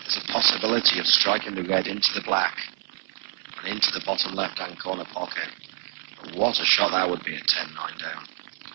There's a possibility of striking the red into the black and into the bottom left-hand corner pocket. But what a shot that would be at 10-9 down.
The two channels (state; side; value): silent; left; digital silence